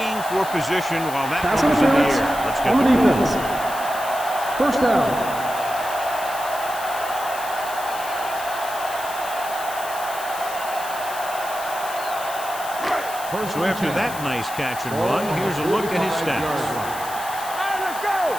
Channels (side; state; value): left; noise; hiss, 12 dB below the sound